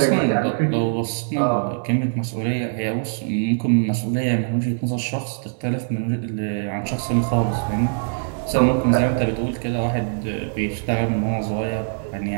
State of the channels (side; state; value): left; silent; digital silence